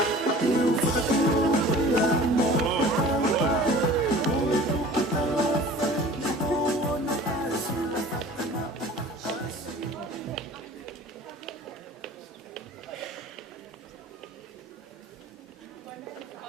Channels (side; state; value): both; normal; correlation 0.44